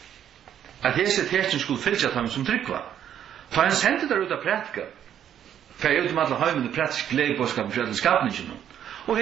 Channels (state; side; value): quieter; left; 9.9 dB